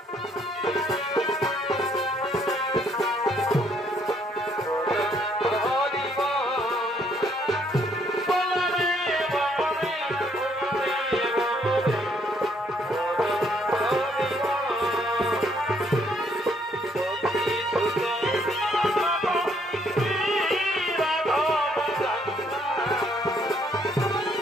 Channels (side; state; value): both; normal; correlation 0.68